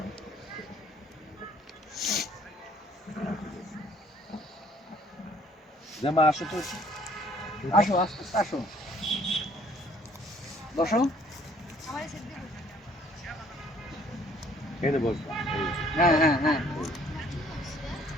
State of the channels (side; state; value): both; normal; correlation 0.59